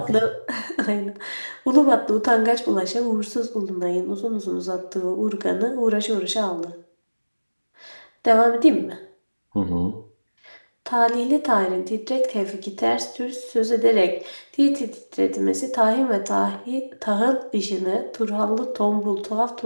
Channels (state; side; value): inverted; both; correlation -1.00